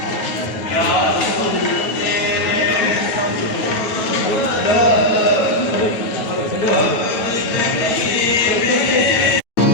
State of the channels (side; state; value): right; late; 9.3 ms